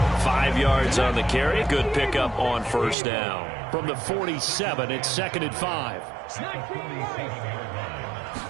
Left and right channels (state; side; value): drops out; left; at 3.0 s